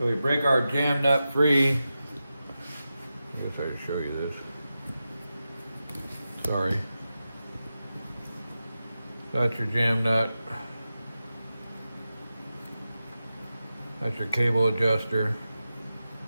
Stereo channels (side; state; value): both; inverted; correlation -0.92